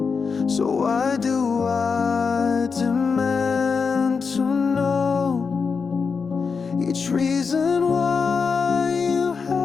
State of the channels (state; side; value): quieter; right; 5.4 dB